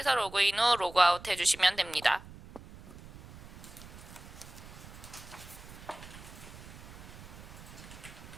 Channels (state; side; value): noise; right; rumble, 16 dB below the sound